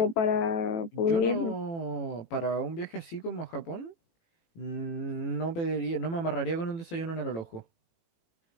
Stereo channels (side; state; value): right; late; 18 ms